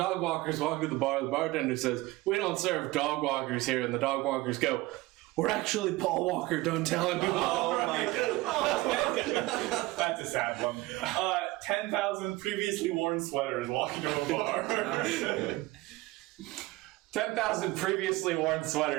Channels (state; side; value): quieter; left; 19.7 dB